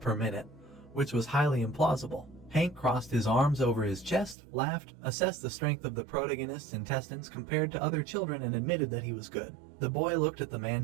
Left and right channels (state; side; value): drops out; left; at 4.4 s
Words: minute, which was highly implausible. Hank crossed his arms over his chest, laughed, assessed the strength of the protagonist's intestines compared to other children and admitted that he was good. The boy looked at the